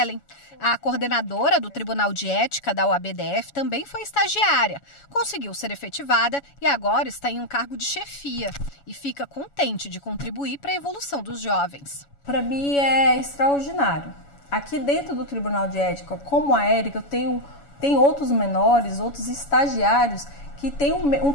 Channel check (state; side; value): late; right; 7.1 ms